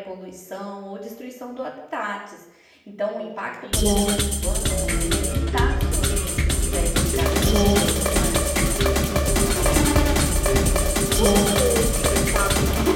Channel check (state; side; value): identical; both; correlation 1.00